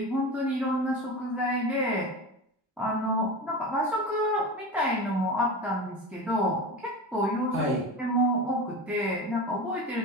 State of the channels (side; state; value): both; normal; correlation 0.28